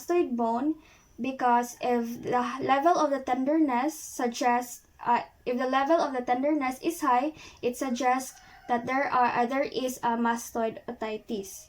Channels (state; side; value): identical; both; correlation 1.00